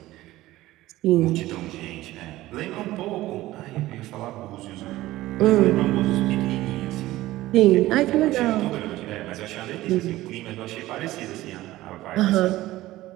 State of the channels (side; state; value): left; quieter; 16.6 dB